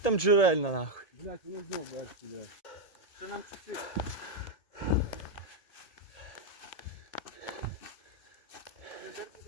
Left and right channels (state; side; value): late; right; 1.7 ms